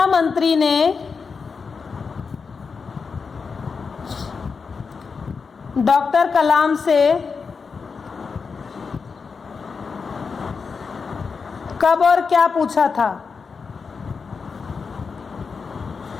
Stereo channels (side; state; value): right; quieter; 5.3 dB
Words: मंत्री ने डॉक्टर कलाम से कब और क्या पूछा था?